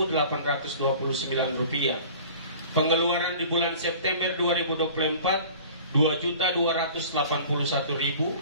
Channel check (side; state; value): both; inverted; correlation -0.44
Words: rupiah. Pengeluaran di bulan September 2024